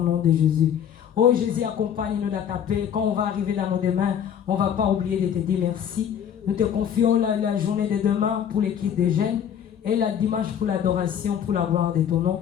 de Jésus. Oh Jésus, accompagne-nous dans ta paix. Quand on va arriver dans nos demain, on ne va pas oublier de te dire merci. Nous te confions la journée de demain pour l'équipe des jeunes et la dimanche pour l'adoration, pour la gloire de ton nom.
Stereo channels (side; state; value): right; quieter; 8.8 dB